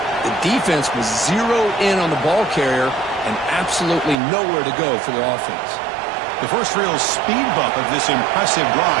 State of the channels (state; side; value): drops out; left; at 4.2 s